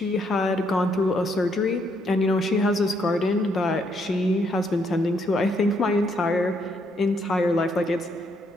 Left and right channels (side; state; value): both; normal; correlation 0.73